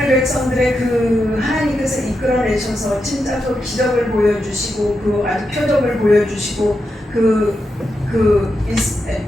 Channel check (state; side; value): normal; both; correlation 0.86